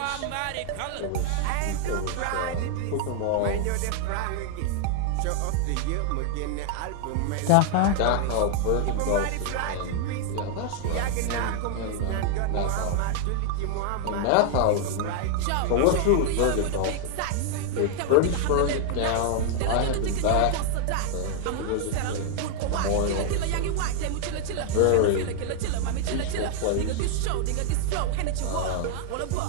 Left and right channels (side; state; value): both; different; correlation 0.00